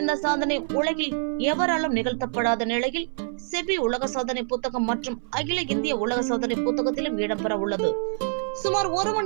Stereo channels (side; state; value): left; silent; 61 dB below the other